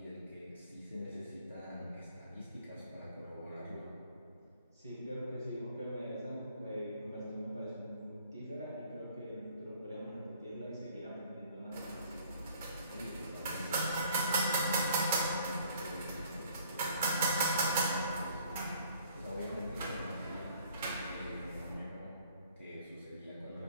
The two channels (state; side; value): inverted; both; correlation -0.57